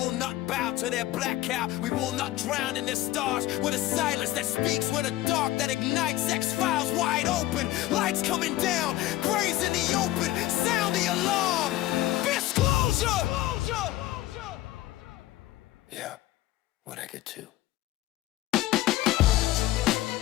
not bow to their black cow, we will not drown in their stars. With a silence that speaks, with a dark that ignites, X-Files wide open, lights coming down, graves in the open, sound the alarm. Disclosure! Yeah, what I get to.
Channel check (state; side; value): quieter; right; 15.7 dB